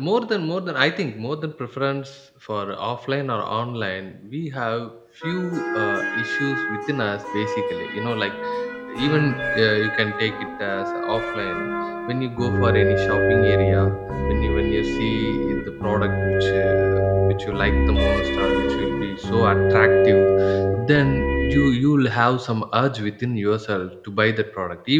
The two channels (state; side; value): identical; both; correlation 1.00